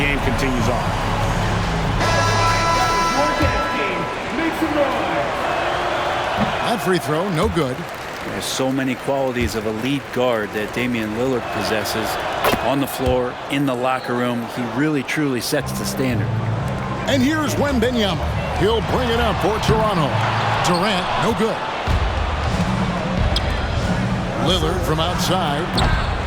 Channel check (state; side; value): identical; both; correlation 1.00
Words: continues on. That free throw, no good. There's so many qualities of a lead guard that Damian Lillard possesses on the floor, in the locker room. He really, truly sets the standard. And here's Wembanyama. He'll bring it up for Toronto. Durant, no good. Lillard from outside.